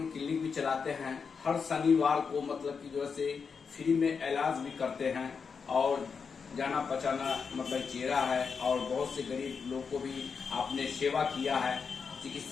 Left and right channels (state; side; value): quieter; right; 5.7 dB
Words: क्लिनिक भी चलाते हैं। हर शनिवार को मतलब कि जो है से फ्री में इलाज भी करते हैं और जाना पहचाना मतलब चेहरा है और बहुत से गरीब लोग को भी आपने सेवा किया है